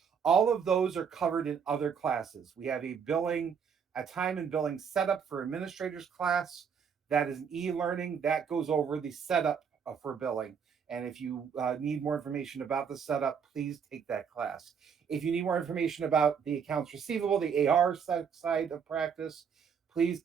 All of those are covered in other classes. We have a time and billing setup for administrators class. That is an e-learning that goes over the setup for billing. And if you need more information about the setup, please take that class. If you need more information about the accounts receivable, the AR side of practice, please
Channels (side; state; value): left; quieter; 6.9 dB